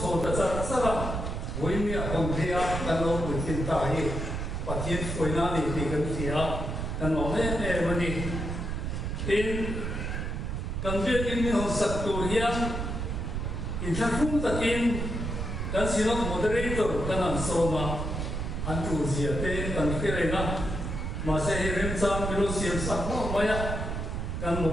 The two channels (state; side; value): noise; right; rumble, 3 dB below the sound